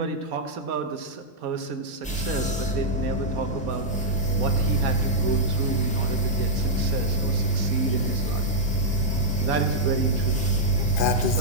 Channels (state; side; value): normal; both; correlation -0.07